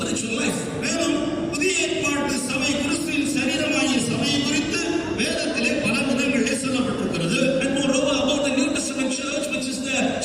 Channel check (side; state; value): both; identical; correlation 1.00